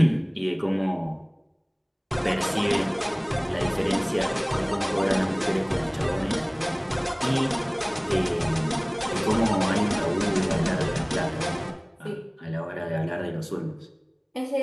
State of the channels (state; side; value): identical; both; correlation 1.00